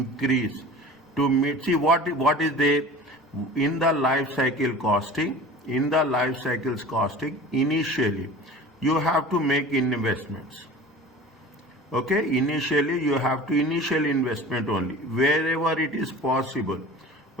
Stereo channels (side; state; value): both; normal; correlation 0.39